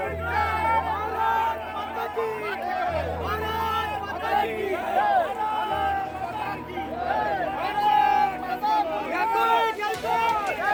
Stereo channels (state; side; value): identical; both; correlation 1.00